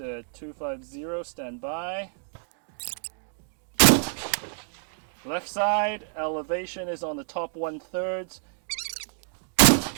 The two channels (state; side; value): silent; left; 59 dB below the other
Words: 250, stand by. Left side, elevation is on the top 1/3.